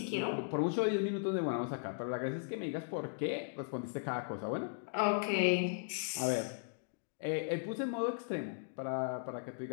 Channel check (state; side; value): silent; right; digital silence